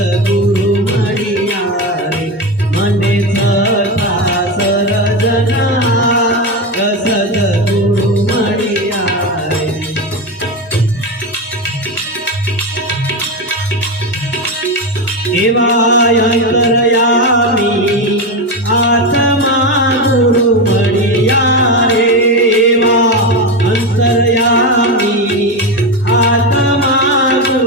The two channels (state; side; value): normal; both; correlation 0.15